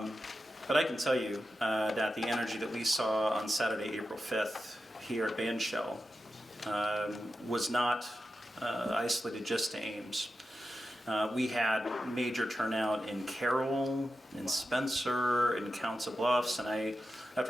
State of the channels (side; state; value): both; normal; correlation 0.91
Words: I can tell you that the energy that we saw on Saturday, April 5th, here at Bandshell was not isolated just to Ames. We had major turnout in Carroll, in Spencer, in Council Bluffs, and